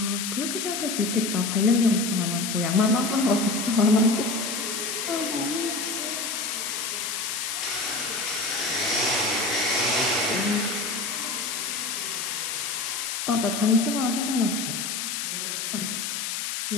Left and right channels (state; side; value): noise; left; hiss, 3 dB below the sound